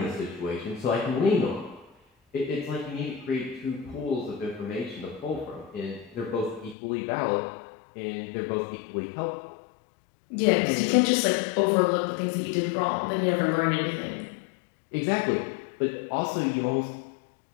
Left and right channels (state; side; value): drops out; right; at 6.8 s